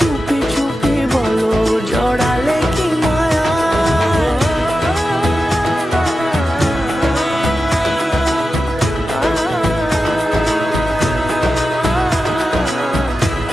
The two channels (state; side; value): normal; both; correlation 0.92